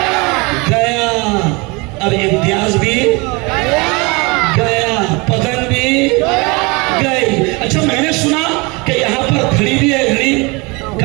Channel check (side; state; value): left; quieter; 27.2 dB